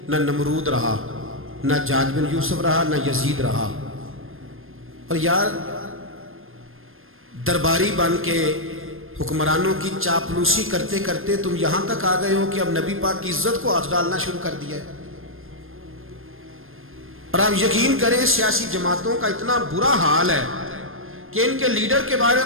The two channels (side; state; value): left; late; 0.60 ms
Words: نہ نمرود رہا، نہ جاج بن یوسف رہا، نہ یزید رہا، اور یار درباری بن کے حکمرانوں کی چاپلوسی کرتے کرتے تم یہاں تک آ گئے ہو کہ اب نبی پاک کی عزت کو ہاتھ ڈالنا شروع کر دیا ہے۔ اور آپ یقین کریں سیاسی جماعتوں کا اتنا برا حال ہے کہ ان کے لیڈر کے بارے